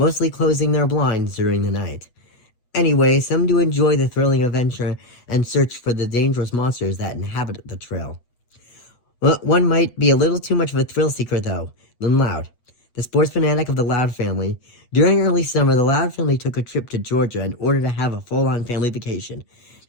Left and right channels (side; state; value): right; late; 8.3 ms